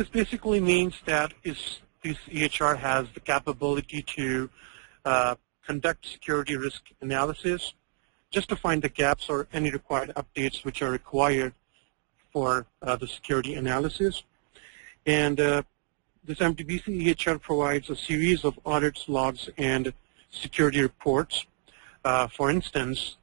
basically means that this EHR has the capability to conduct security risk analysis, just to find the gaps or any required updates which are required for the security analysis. And this MTBC EHR provides a series of audits, logs, and security reports. For instance,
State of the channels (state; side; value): silent; left; 59 dB below the other